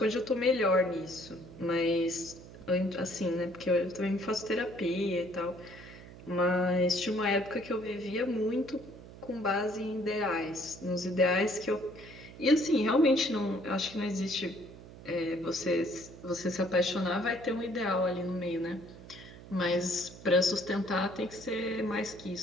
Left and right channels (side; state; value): right; noise; hum, 17 dB below the sound